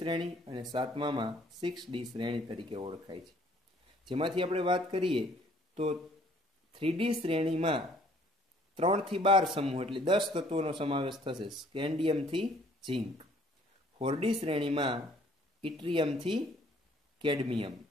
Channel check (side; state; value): both; normal; correlation 0.60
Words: અને 7મામાં 6D શ્રેણી તરીકે ઓળખાય છે. જેમાંથી આપણે વાત કરીએ તો 3D શ્રેણીમાં 3 થી 12 સમૂહ એટલે 10 તત્વોનો સમાવેશ થશે, સ્કેન્ડિયમથી ઝિંક. 4D શ્રેણીમાં ઇટ્રિયમથી કેડમિયમ.